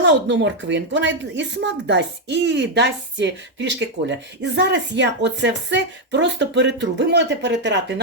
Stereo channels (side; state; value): both; normal; correlation 0.02